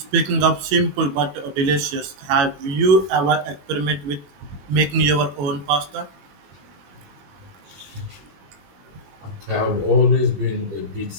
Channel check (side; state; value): left; late; 21 ms